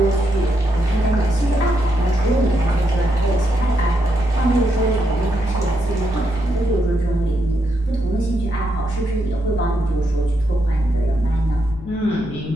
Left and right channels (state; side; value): noise; left; rumble, 16 dB below the sound